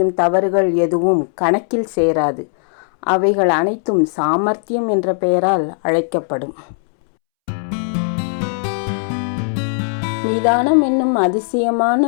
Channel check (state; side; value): silent; right; 68 dB below the other